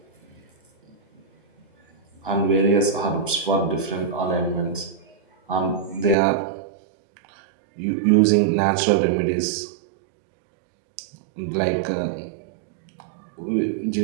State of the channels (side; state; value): left; drops out; at 6.2 s